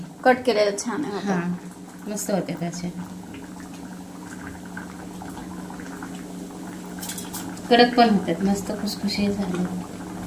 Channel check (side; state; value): both; identical; correlation 1.00